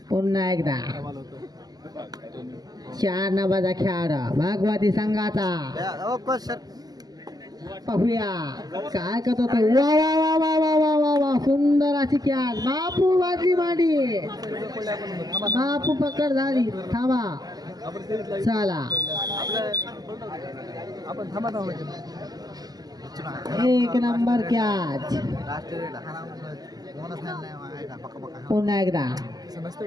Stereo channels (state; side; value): late; left; 0.19 ms